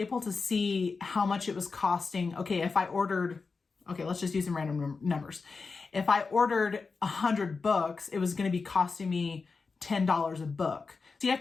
to see how much it was costing. Okay, if I ordered, let's just use some random numbers. If I ordered 100 books, it was going to be costing me $10 a book. So you have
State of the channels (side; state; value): right; quieter; 4.5 dB